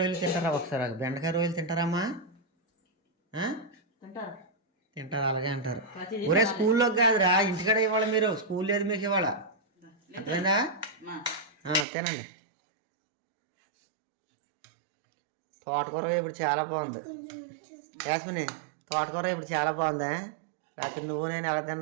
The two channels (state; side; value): drops out; left; at 11.9 s